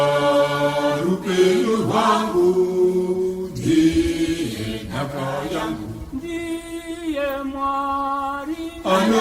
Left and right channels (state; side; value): identical; both; correlation 1.00